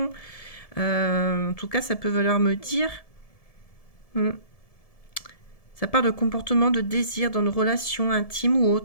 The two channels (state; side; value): late; right; 1.7 ms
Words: En tout cas, ça peut vouloir me dire. Hmm, ça parle de comportement de désir dans nos relations intimes ou